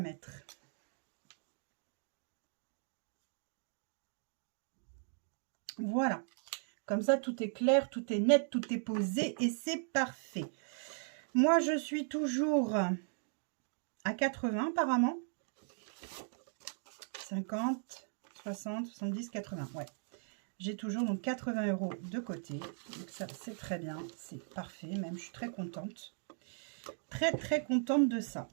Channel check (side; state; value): left; silent; 53 dB below the other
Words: Voilà. Comme ça, tout est clair, tout est net, tout est posé et c'est parfait. Moi, je suis toujours à 80 apparemment. 50, 60, 70, 80. Ouais. J'ai toujours donc 80 € de côté. Donc ça, c'est très bien. C'est parfait. Même, je suis très contente. Très contente de ça.